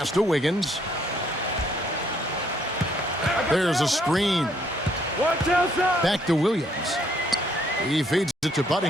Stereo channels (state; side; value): normal; both; correlation 0.67